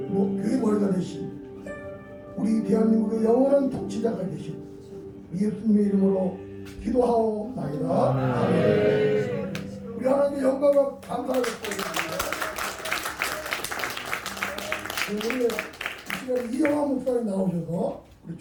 머리가 되신 우리 대한민국의 영원한 통치자가 되신 예수님의 이름으로 기도하옵나이다. 아멘. 우리 하나님의 영광과 감사를 드립니다. 오늘 이 시간에 이영하 목사님 나오셔서 우리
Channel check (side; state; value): both; identical; correlation 1.00